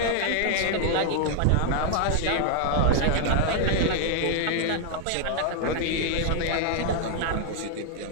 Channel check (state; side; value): different; both; correlation 0.00